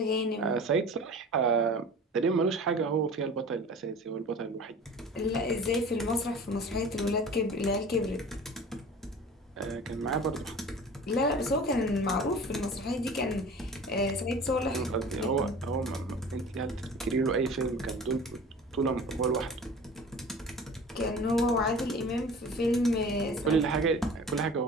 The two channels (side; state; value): both; normal; correlation 0.41